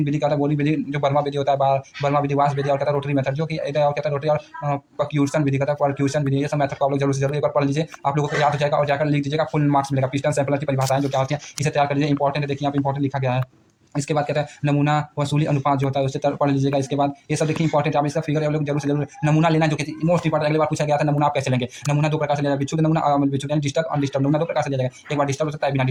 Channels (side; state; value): both; identical; correlation 1.00